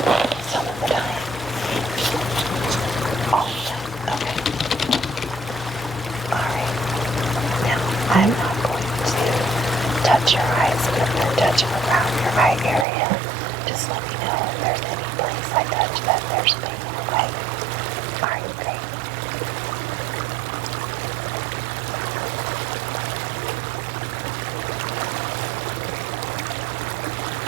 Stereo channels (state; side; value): drops out; left; at 12.9 s